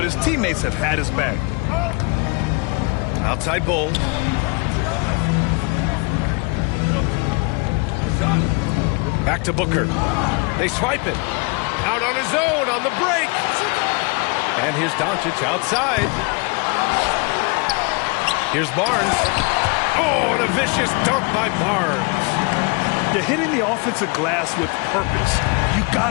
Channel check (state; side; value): quieter; right; 31.2 dB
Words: his teammates have had his back. Outside Bull. Back to Booker. They swipe it. Out on his own on the break. And here's Doncic outside. Here's Barnes. Oh, and a vicious dunk by Barnes. You're hitting the offensive glass with purpose. You